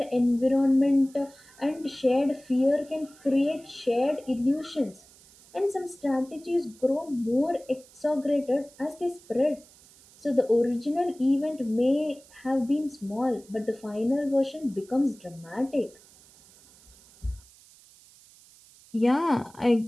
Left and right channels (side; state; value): right; noise; hiss, 25 dB below the sound